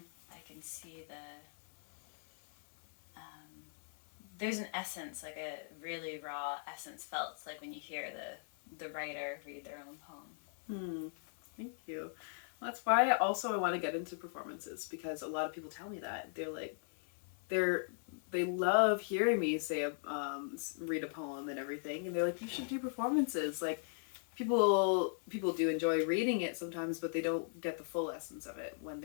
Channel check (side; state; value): right; silent; 52 dB below the other